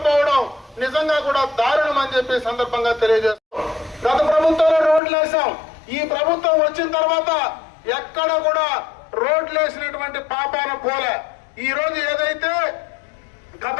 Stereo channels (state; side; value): drops out; right; at 5.0 s